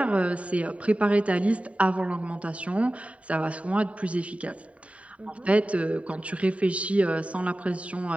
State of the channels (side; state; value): left; late; 0.066 ms